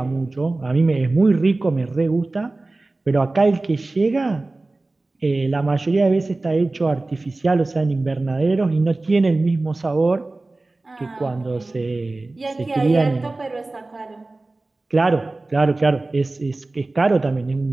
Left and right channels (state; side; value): quieter; left; 3.1 dB